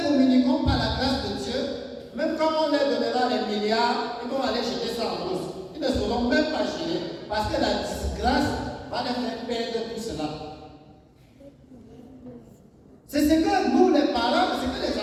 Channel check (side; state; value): both; identical; correlation 1.00